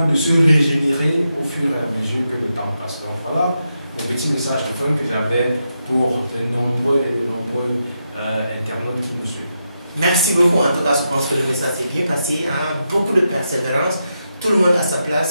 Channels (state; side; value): inverted; both; correlation -0.86